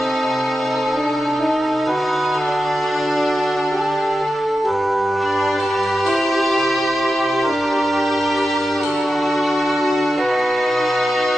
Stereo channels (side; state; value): both; normal; correlation 0.91